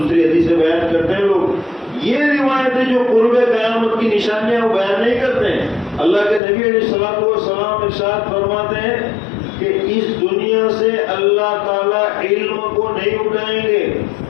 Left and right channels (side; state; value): right; drops out; at 6.4 s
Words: حدیثیں بیان کرتے ہیں لوگ. یہ روایتیں جو قرب قیامت کی نشانیاں وہ بیان نہیں کرتے ہیں. اللہ کے نبی علیہ الصلوۃ والسلام ارشاد فرماتے ہیں کہ اس دنیا سے اللہ تعالیٰ علم کو نہیں اٹھائیں گے.